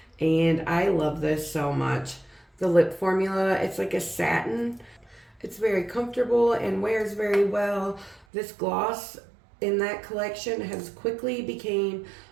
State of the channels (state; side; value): drops out; left; at 8.2 s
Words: and I love this so much. The lip formula, it's like a satin. It's very comfortable and wears very well. This gloss in that collection has quickly became